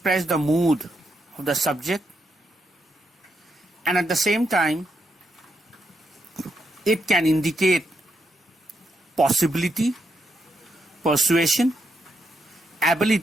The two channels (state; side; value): normal; both; correlation 0.81